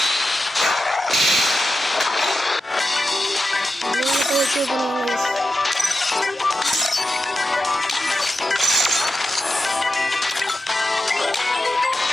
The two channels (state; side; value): normal; both; correlation 0.91